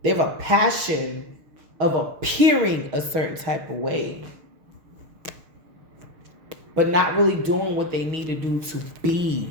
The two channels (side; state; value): left; late; 6.6 ms